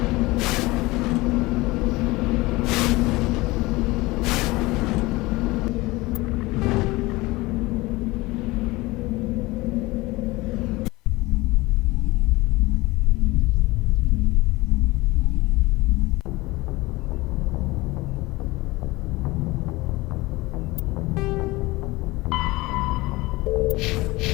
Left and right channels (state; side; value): quieter; right; 21.3 dB